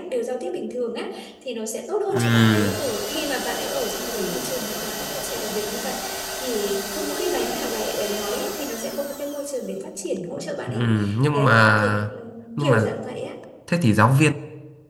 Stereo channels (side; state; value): both; identical; correlation 1.00